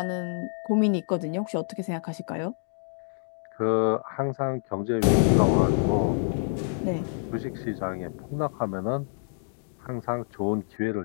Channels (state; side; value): silent; right; digital silence